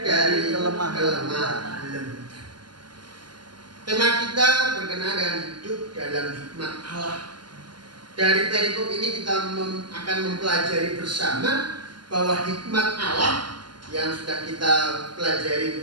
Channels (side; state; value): left; late; 0.72 ms